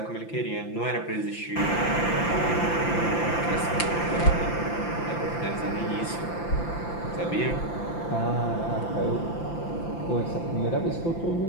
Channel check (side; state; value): right; late; 5.9 ms